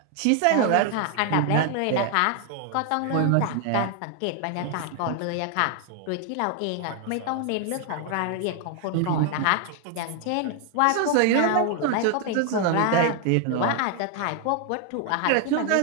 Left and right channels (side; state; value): both; different; correlation 0.00